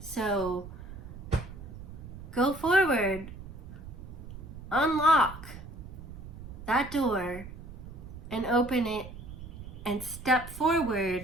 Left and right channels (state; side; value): noise; right; rumble, 12 dB below the sound